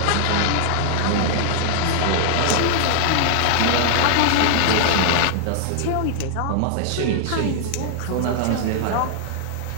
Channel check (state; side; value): different; both; correlation 0.00